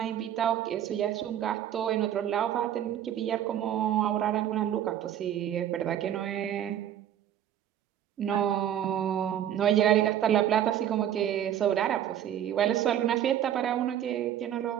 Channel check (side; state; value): left; quieter; 10.7 dB